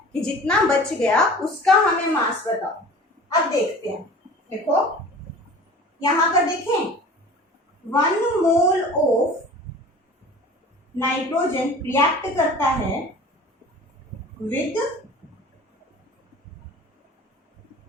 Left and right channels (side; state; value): both; normal; correlation 0.42